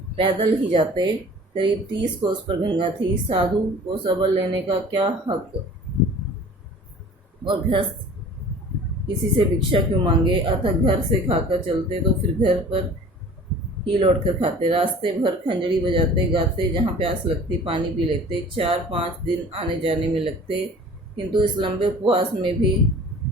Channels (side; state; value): both; normal; correlation 0.45